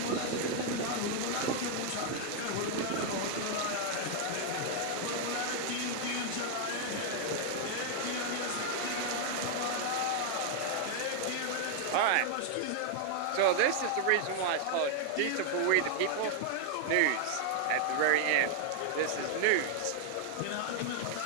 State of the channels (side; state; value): both; different; correlation 0.00